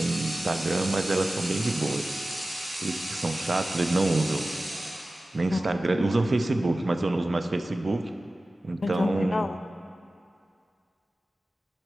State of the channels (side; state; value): both; normal; correlation 0.96